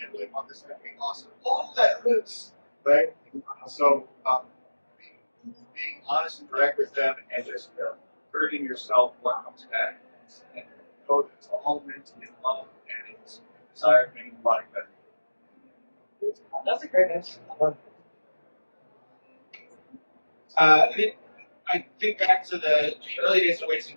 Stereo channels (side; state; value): both; inverted; correlation -1.00